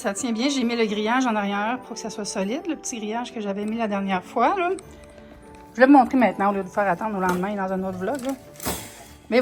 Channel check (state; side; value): identical; both; correlation 1.00